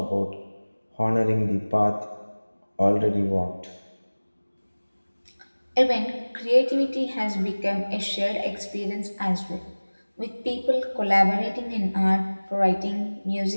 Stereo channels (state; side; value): inverted; both; correlation -1.00